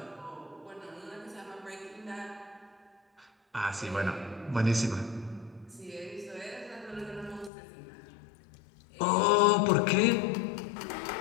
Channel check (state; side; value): drops out; right; at 7.5 s